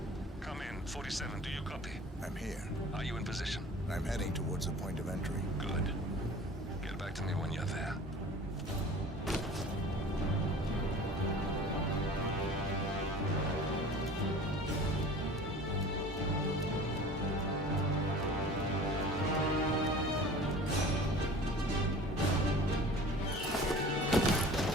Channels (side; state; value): both; normal; correlation 0.42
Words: Come in. 47, do you copy? I'm here. Are you in position? I'm heading towards the point of entry. Good. Get back to me when you're there.